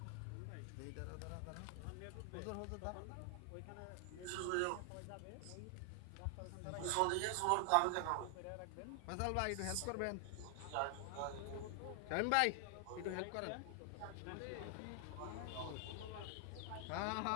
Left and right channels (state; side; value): different; both; correlation 0.00